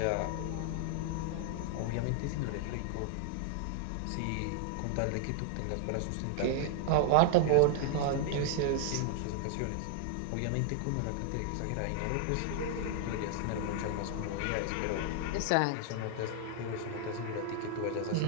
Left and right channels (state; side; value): different; both; correlation 0.00